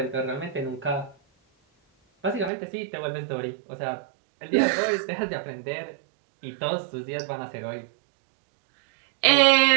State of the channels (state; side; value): drops out; left; at 2.5 s